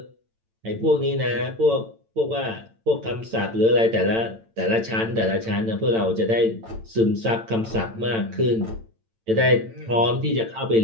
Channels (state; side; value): late; left; 8.9 ms